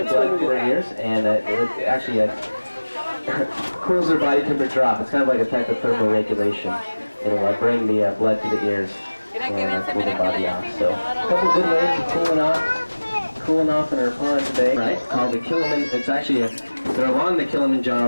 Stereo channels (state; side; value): inverted; both; correlation -1.00